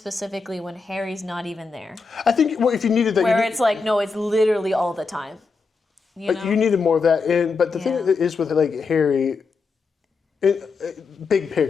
when Harry's not even there. I think if you needed that, Where it's like, no, it's literally all the time. You know? You needed more of that. But the thing is with like Harry, big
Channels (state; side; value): quieter; right; 4.5 dB